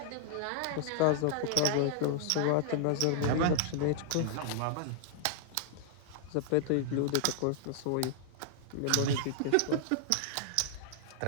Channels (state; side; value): different; both; correlation -0.01